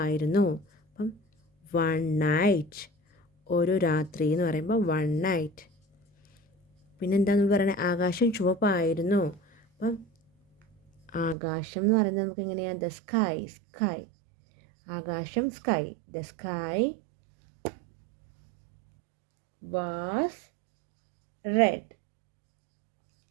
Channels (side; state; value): left; drops out; at 11.4 s